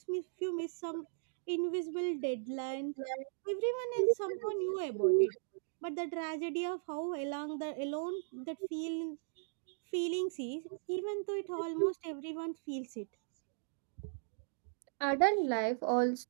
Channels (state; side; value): silent; left; digital silence